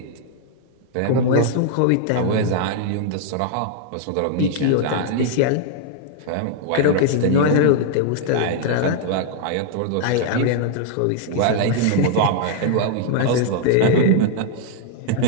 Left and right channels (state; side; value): different; both; correlation 0.00